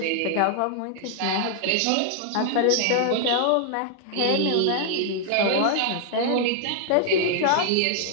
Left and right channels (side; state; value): both; different; correlation 0.00